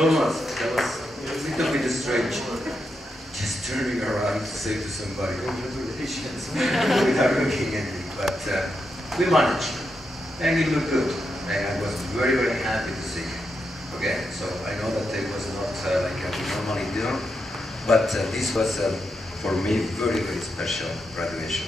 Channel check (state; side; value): normal; both; correlation 0.85